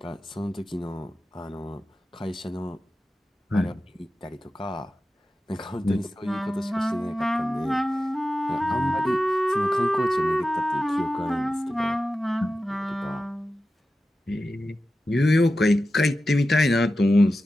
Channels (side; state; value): both; normal; correlation 0.92